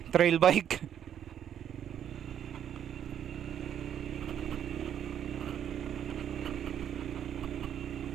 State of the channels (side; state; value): left; quieter; 9.5 dB